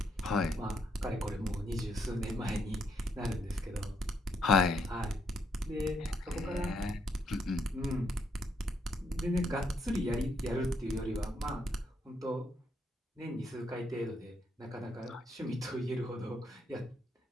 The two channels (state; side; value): normal; both; correlation 0.74